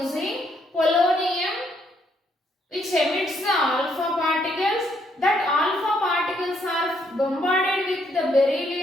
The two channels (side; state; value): both; normal; correlation 0.72